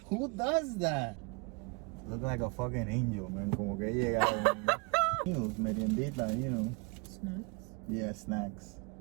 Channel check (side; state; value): left; quieter; 30.2 dB